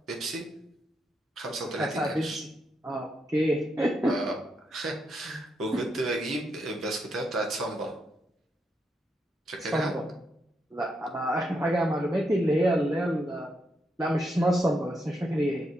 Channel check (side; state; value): both; normal; correlation 0.81